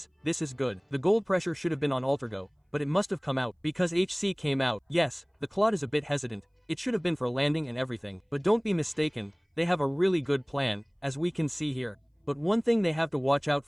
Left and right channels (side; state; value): both; identical; correlation 1.00